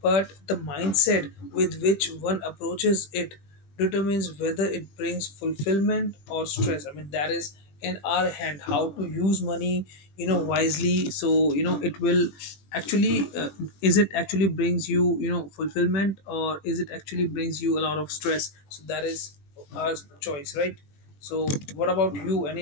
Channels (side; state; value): right; late; 20 ms